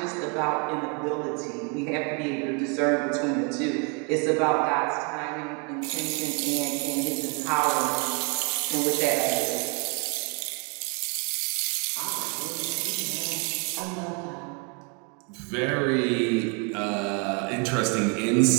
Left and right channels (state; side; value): quieter; left; 35.4 dB